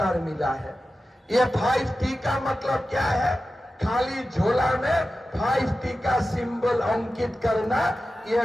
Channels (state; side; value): normal; both; correlation 0.93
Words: मिला है। ये 5T का मतलब क्या है? खाली झोला में 5T का सिंबल अंकित करना,